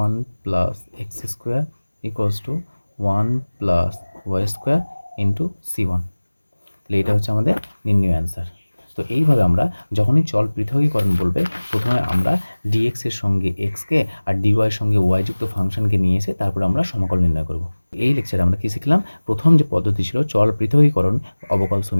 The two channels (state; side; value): inverted; both; correlation -1.00